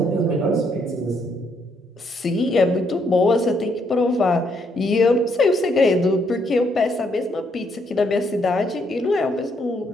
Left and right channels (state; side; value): normal; both; correlation 0.73